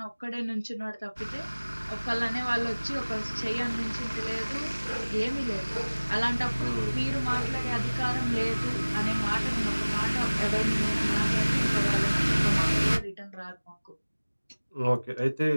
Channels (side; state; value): both; inverted; correlation -1.00